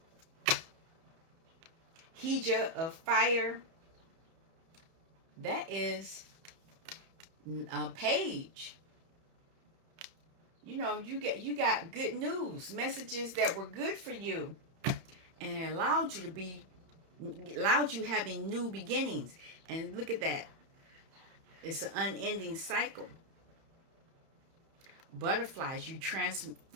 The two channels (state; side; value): late; left; 31 ms